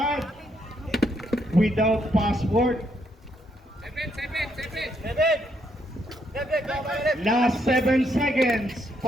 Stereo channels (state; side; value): normal; both; correlation 0.75